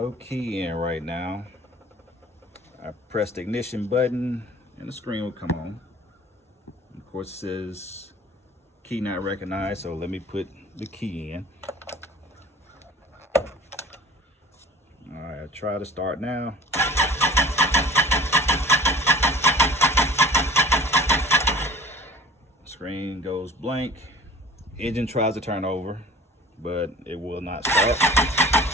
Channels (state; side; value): normal; both; correlation 0.44